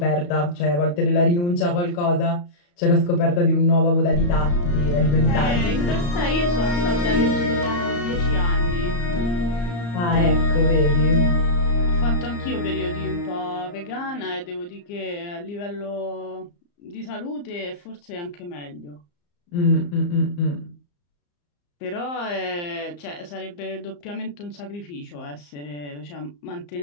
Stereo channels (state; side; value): late; right; 34 ms